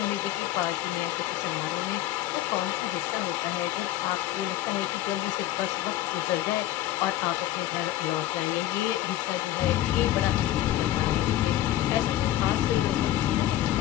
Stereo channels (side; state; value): right; quieter; 13.8 dB